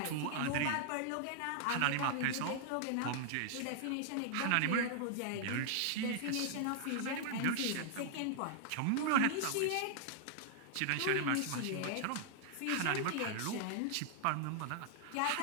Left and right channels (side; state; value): both; different; correlation 0.00